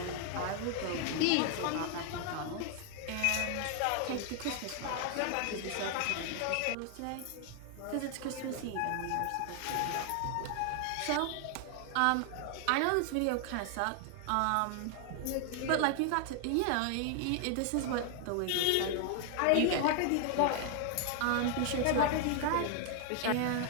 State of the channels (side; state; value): both; different; correlation 0.00